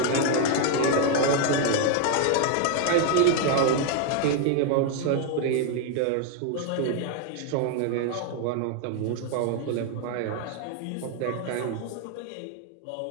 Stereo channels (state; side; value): different; both; correlation 0.00